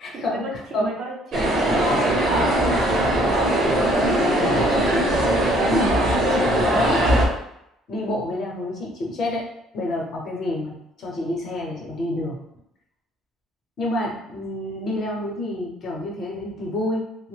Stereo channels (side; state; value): both; normal; correlation 0.61